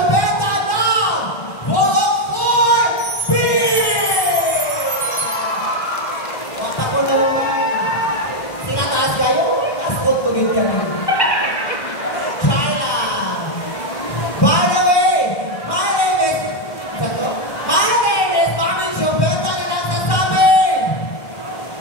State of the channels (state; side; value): late; right; 1.1 ms